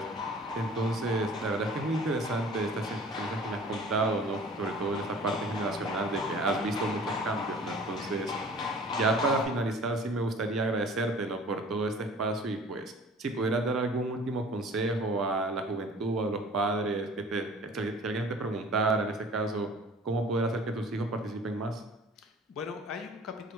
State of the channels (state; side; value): normal; both; correlation 0.47